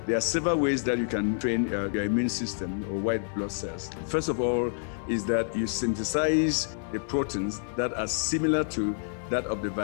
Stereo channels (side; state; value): right; silent; 59 dB below the other